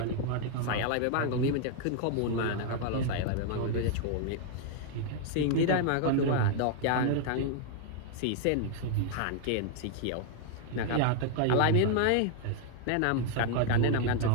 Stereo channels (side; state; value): both; different; correlation 0.00